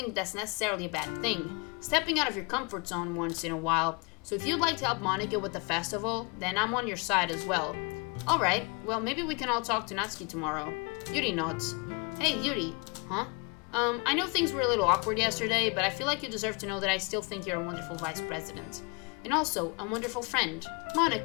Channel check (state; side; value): quieter; right; 31.3 dB